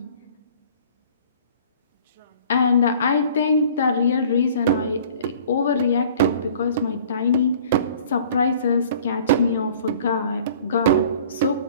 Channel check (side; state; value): both; inverted; correlation -0.50